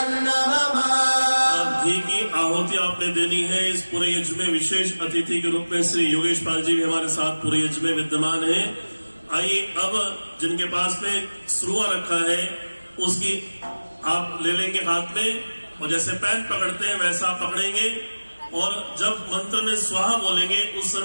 घी की आहुति आपने देनी है। इस पूरे यज्ञ में विशेष अतिथि के रूप में श्री योगेश पाल जी भी हमारे साथ पूरे यज्ञ में विद्यमान है। आइए अब जिनके पास में श्रुआ रखा है उसकी आप ले लेंगे हाथ में और जैसे पैन पकड़ते हैं वैसा आप पकड़ेंगे और जब मंत्र में स्वाहा बोलेंगे उस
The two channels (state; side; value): inverted; both; correlation -1.00